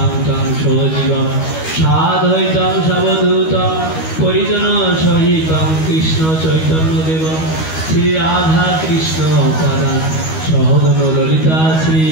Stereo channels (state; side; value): late; right; 13 ms